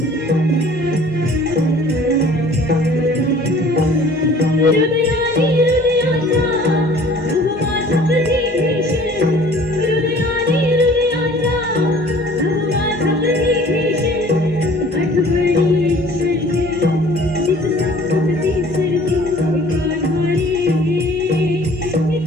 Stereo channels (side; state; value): both; normal; correlation 0.51